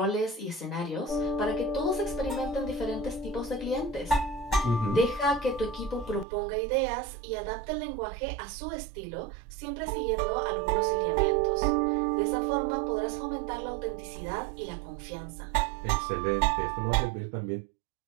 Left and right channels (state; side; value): drops out; left; at 6.2 s